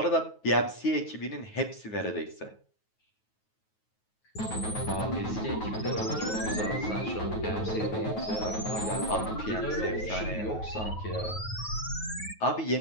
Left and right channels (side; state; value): right; late; 9.3 ms